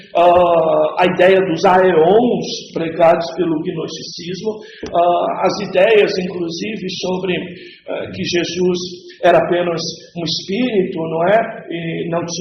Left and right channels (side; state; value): both; identical; correlation 1.00